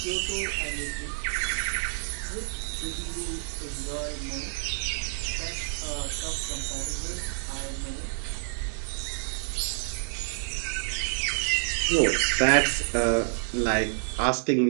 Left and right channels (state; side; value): silent; left; digital silence